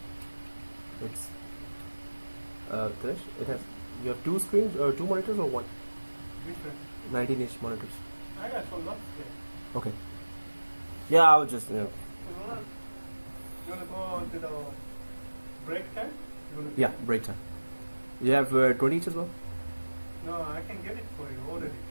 it's Krish, it has, you have two screens or two monitors or one? Which one? 19-inch monitors. I got some nuts there. Okay. Yeah, I was just, You wanna go to the break time? Yeah, break time. You have 20 each as well? No, I can get it for you already.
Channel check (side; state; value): both; inverted; correlation -1.00